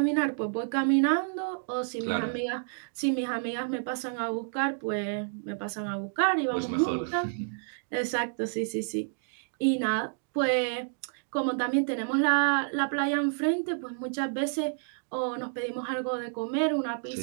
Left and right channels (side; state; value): left; silent; digital silence